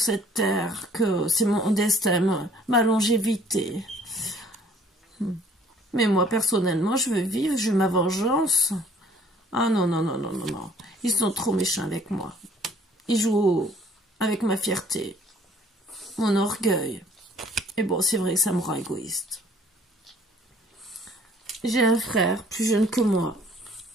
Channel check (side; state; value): both; normal; correlation 0.57